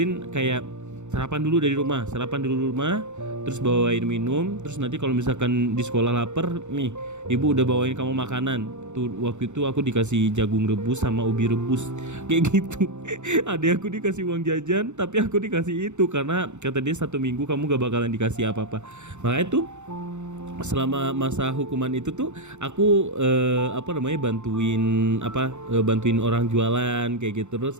kayak sarapan dulu dari rumah, terus bawain minum, terus nanti kalau misalkan di sekolah lapar nih, ibu udah bawain kamu makanan. Tuh waktu itu aku dikasih jagung rebus sama ubi rebus kayak gitu. Adek aku dikasih uang jajan, tapi aku dikasih itu karena kata dia 1 minggu kamu gak bakalan dikasih apa-apa. Makanya tuh selama masa hukuman itu tuh aku bantuin orang jualan kayak gitu.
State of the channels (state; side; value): late; left; 0.83 ms